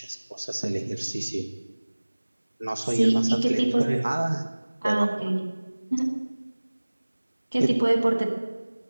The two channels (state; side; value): inverted; both; correlation -1.00